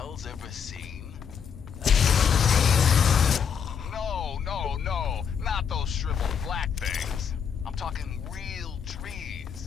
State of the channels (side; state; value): right; quieter; 7.2 dB